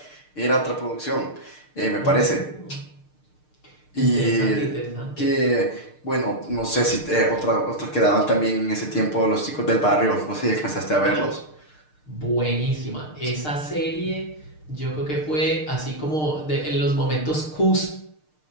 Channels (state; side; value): late; right; 6.6 ms